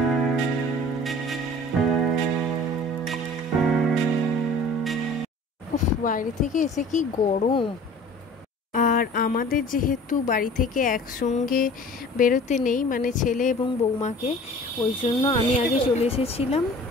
বাইরে থেকে এসে কি গরম। আর আমাদের যেহেতু বাড়ি থেকে একসঙ্গে বেরোতে নেই, মানে ছেলে এবং বৌমাকে, ওই জন্য আমি আগে চলে এসেছিলাম।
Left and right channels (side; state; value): both; normal; correlation 0.46